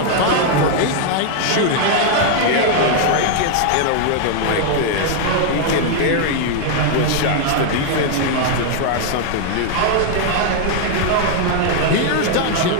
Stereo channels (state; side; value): different; both; correlation 0.00